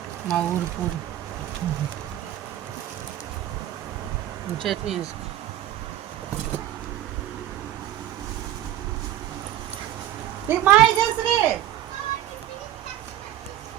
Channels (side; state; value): left; quieter; 12.6 dB